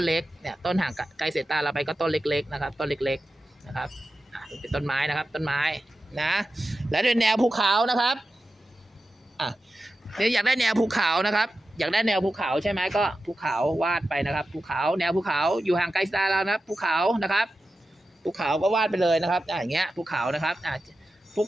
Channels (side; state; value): both; normal; correlation 0.92